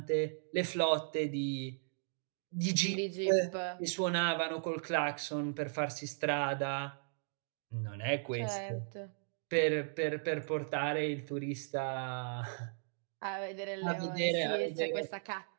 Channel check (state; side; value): silent; left; digital silence